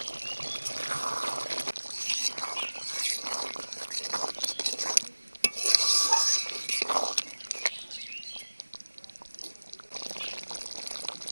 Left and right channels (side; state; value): both; inverted; correlation -1.00